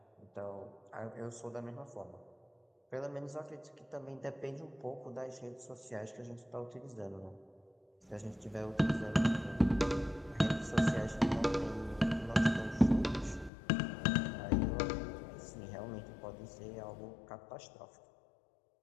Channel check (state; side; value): drops out; right; at 13.5 s